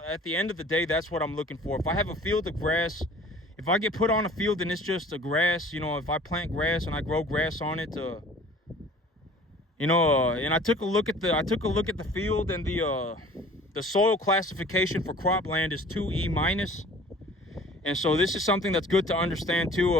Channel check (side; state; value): both; normal; correlation 0.48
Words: end of the day, that's what I'm looking for. If I have a field of grass, if I get put on a field and it's just a grass, you know, if I plant grass and I grow grass on it, you know, and I took a look at the field, and the soil classification for cropland is 2E minus. And so this is something that's good to understand too.